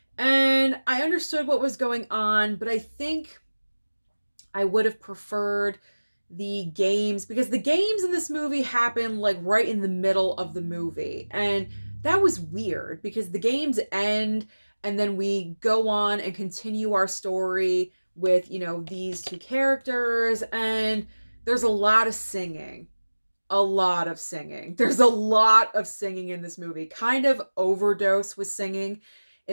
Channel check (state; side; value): inverted; both; correlation -1.00